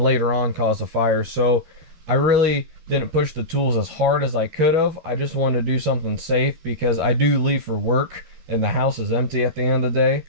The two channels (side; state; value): left; late; 12 ms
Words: later on cause a fire. So I really didn't push the tools as hard as I could have. I just wanted to do something safe because I do leave for work and the house is empty at the end of the day.